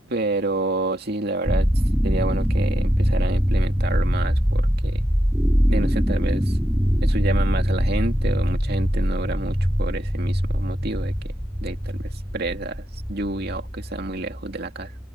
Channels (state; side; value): normal; both; correlation 0.84